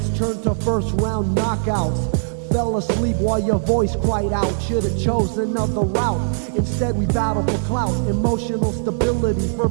turned to first round knockouts. Fell asleep while your voice cried out. Should've chosen another route. Instead we battle for clout. Emotional stability,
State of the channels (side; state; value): left; silent; digital silence